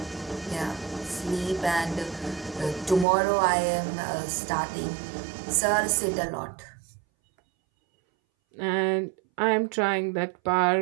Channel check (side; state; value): left; drops out; at 3.1 s